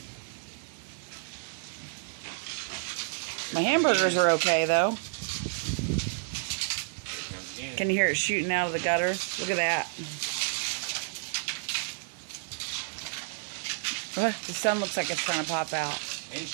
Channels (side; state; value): left; silent; 58 dB below the other